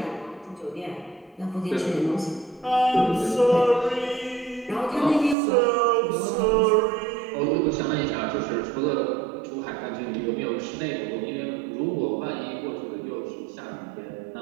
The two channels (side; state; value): left; drops out; at 5.4 s